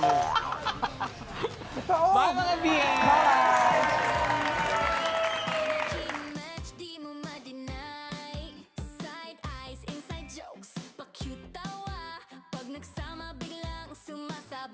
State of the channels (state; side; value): identical; both; correlation 1.00